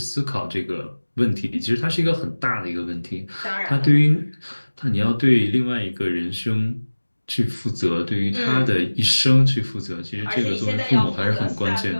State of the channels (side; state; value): both; inverted; correlation -1.00